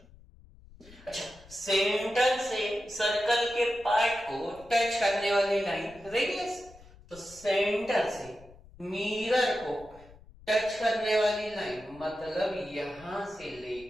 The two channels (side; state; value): left; noise; rumble, 23 dB below the sound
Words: अच्छा, सेंटर से सर्कल के पार्ट को टच करने वाली लाइन रेडियस, तो सेंटर से मिरर को टच करने वाली लाइन मतलब यहां से